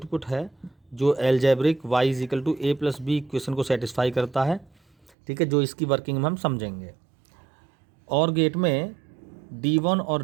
है, जो algebraic Y is equal to A plus B equation को सेटिस्फाई करता है, ठीक है, जो इसकी वर्किंग में हम समझेंगे। और गेट में D1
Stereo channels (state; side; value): drops out; left; at 5.1 s